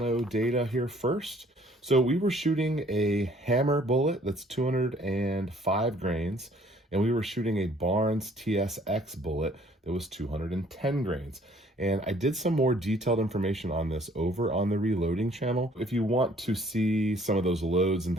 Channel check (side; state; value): both; normal; correlation 0.59